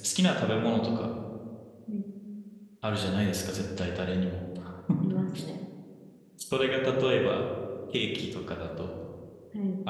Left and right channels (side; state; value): both; identical; correlation 1.00